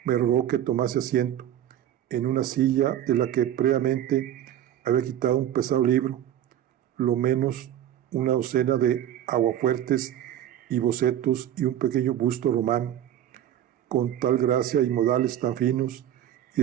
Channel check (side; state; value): left; quieter; 11.3 dB